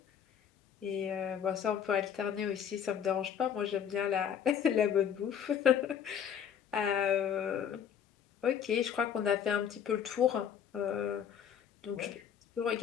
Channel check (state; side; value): quieter; right; 8.6 dB